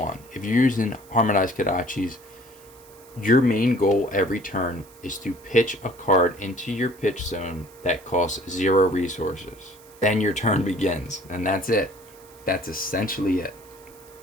If you're using Harmonized Kodachis, your main goal every turn is to pitch a card into your pitch zone that costs 0 resources. Then your turn begins, and that's it. That's essentially it.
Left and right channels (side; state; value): right; noise; hiss, 24 dB below the sound